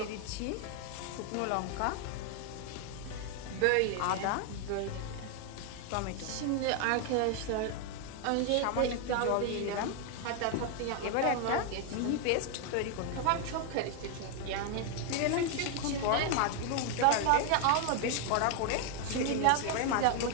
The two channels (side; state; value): both; different; correlation 0.00